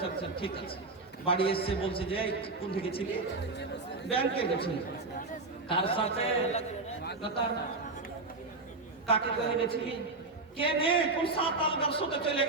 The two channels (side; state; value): left; quieter; 3.5 dB